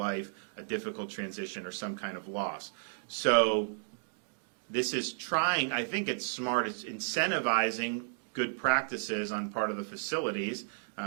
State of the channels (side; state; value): left; silent; digital silence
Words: a difficult transition, or some kind of loss. So this is trying, I think it's smart, it's incentivizing good practices on part of the facilities,